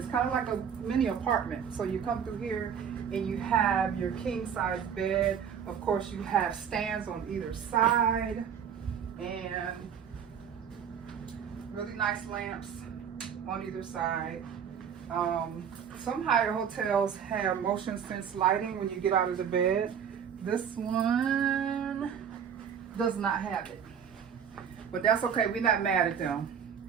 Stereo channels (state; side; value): quieter; left; 7.9 dB